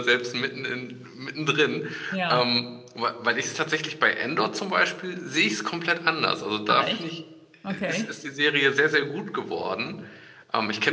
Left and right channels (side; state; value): both; identical; correlation 1.00